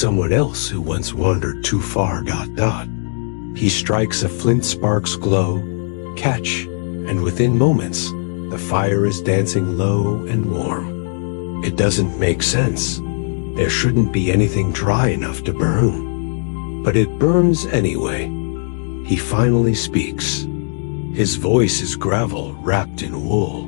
else who once wandered too far. He strikes a flint spark's glow, catch, and within moments, the fire is dancing low and warm. It doesn't make sense. There shouldn't be anything dry enough to burn. But it burns anyway. He finally speaks. His voice is gravel wrapped in wool.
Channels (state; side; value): silent; right; digital silence